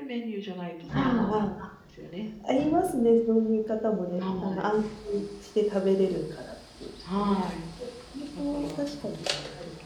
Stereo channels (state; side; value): identical; both; correlation 1.00